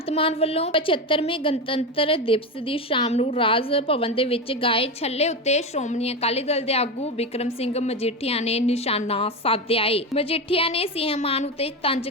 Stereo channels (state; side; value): normal; both; correlation 0.18